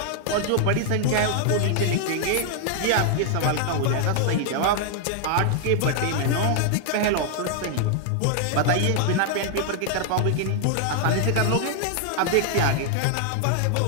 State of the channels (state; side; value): different; both; correlation 0.00